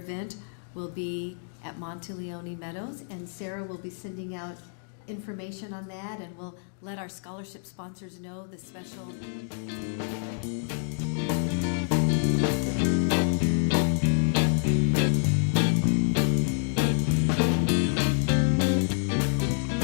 will be at Monteleone Meadows, and Sarah will be sending out information on that, and we'll let our scholarship sponsors know the special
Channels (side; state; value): right; silent; digital silence